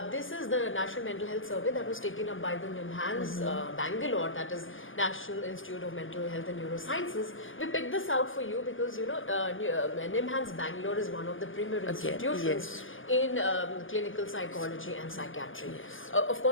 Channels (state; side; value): late; right; 0.58 ms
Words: this is the National Mental Health Survey that was taken up by the NIMHANS Bangalore, that is National Institute of Mental Health and Neurosciences. We picked this out for you because NIMHANS Bangalore is one of the premier institutions in clinical psychology and psychiatry. Of